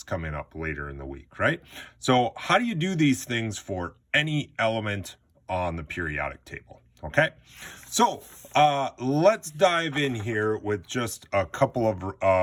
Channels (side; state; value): both; identical; correlation 1.00